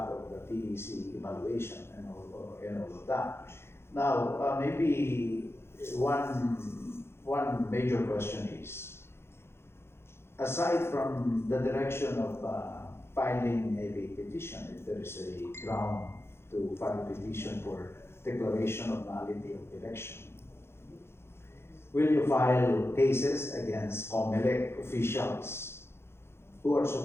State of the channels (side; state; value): right; late; 0.12 ms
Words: of the PEC evaluation, and all of that. Now, maybe one major question is, aside from the direction of filing a petition, if there is a ground to file a petition for declaration of nullity of election, will you file cases against COMELEC officials who are